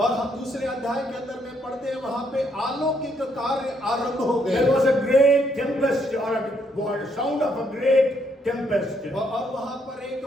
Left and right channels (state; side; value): normal; both; correlation 0.73